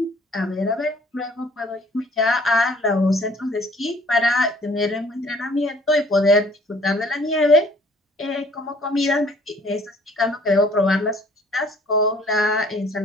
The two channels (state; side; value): normal; both; correlation 0.56